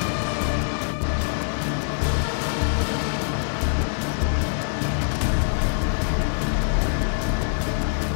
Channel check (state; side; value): silent; right; 59 dB below the other